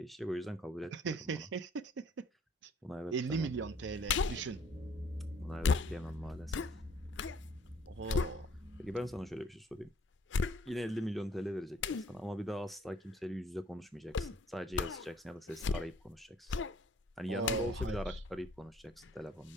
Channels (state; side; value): normal; both; correlation 0.59